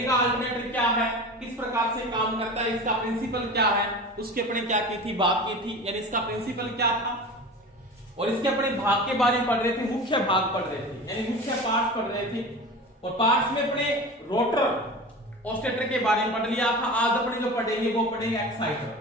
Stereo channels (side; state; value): both; normal; correlation 0.33